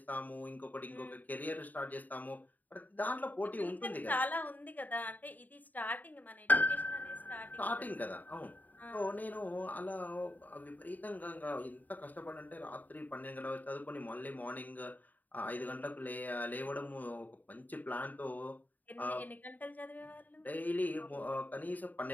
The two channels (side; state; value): right; late; 0.084 ms